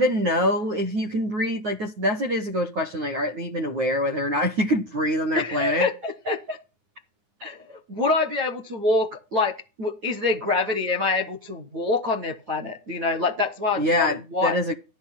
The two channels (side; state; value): left; late; 9.6 ms